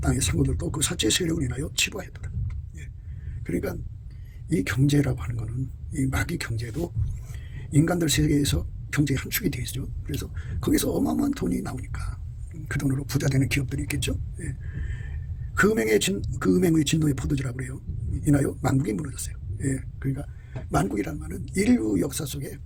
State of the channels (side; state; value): both; identical; correlation 1.00